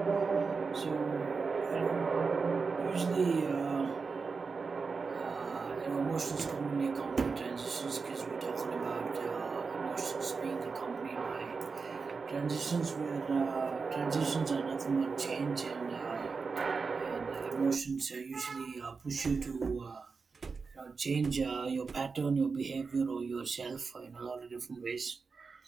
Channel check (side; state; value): left; quieter; 4.8 dB